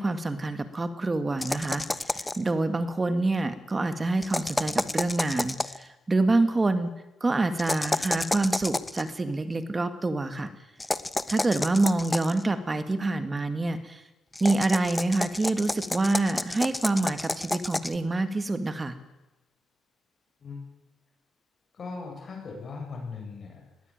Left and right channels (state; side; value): normal; both; correlation 0.95